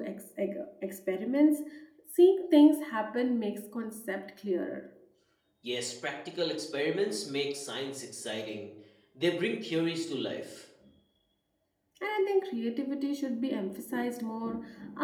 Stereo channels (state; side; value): identical; both; correlation 1.00